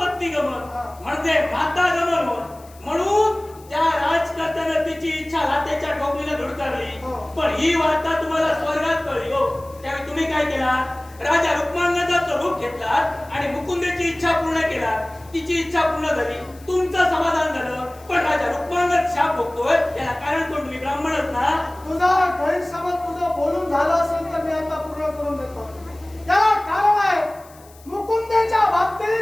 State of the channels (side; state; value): left; noise; hiss, 25 dB below the sound